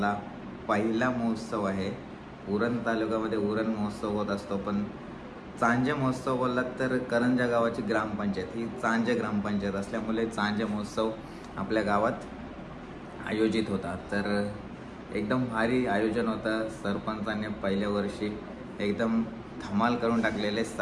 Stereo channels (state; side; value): identical; both; correlation 1.00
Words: पहिला महोत्सव आहे. उरण तालुक्यामध्ये उरण महोत्सव होत असतो, पण चांजे महोत्सव बोललात तर करंजा गावाची ग्रामपंचायत ही चांजे ग्रामपंचायत असल्यामुळे चांजे महोत्सव आपल्या गावात आयोजित होता. तर एकदम भारी आयोजन होतं. सरपंचाने पहिल्या वर्षी एकदम धमाल करून टाकलेले.